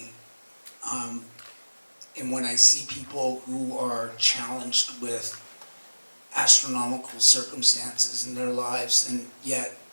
And when I see people who are challenged with astronomical circumstances in their lives, and yet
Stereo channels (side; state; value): both; inverted; correlation -1.00